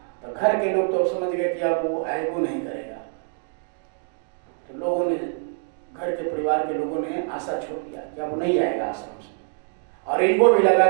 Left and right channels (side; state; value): left; silent; digital silence